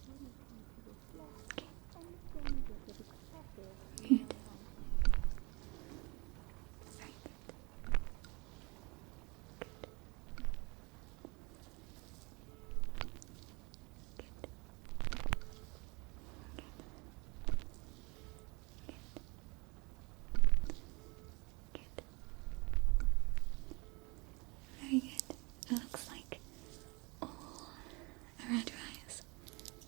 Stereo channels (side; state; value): left; quieter; 27.9 dB